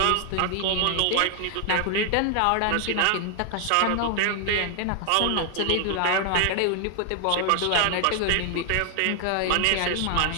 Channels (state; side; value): different; both; correlation 0.00